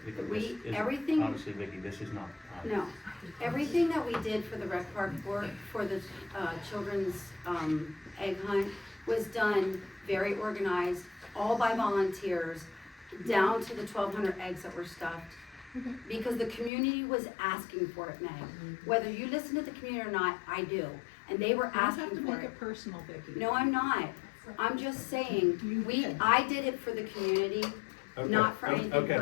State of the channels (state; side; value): drops out; right; at 16.7 s